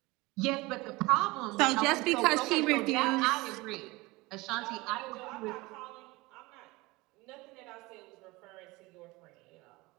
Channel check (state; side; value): quieter; left; 22.3 dB